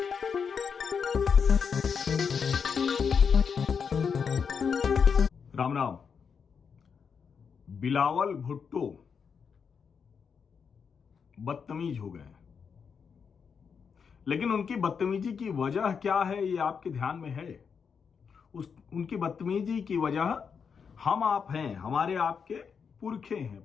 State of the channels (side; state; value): right; quieter; 6.3 dB